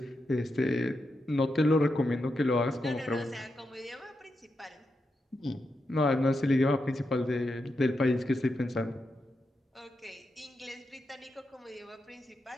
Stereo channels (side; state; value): both; normal; correlation 0.86